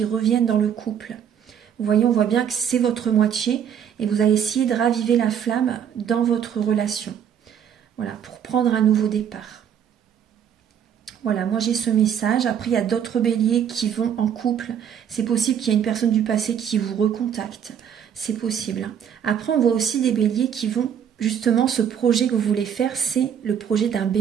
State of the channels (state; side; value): quieter; left; 8.6 dB